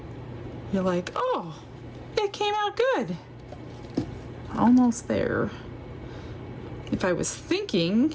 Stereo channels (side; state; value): both; identical; correlation 1.00